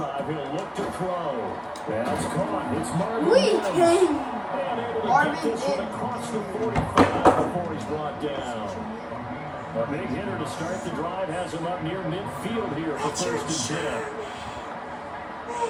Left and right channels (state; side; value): identical; both; correlation 1.00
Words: He'll look to throw. That's caught. It's Marvin We Mims. came. And able to Marvin get this one Mims. across the 45 before he's brought down. A big hitter to start the drive has him up near midfield here for Richard first and 10. Sherman.